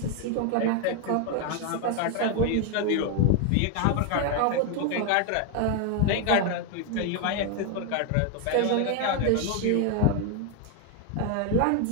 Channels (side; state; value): both; different; correlation 0.01